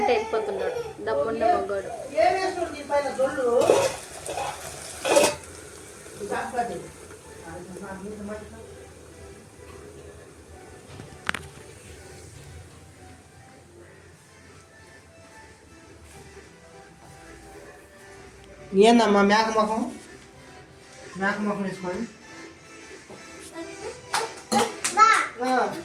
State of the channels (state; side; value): identical; both; correlation 1.00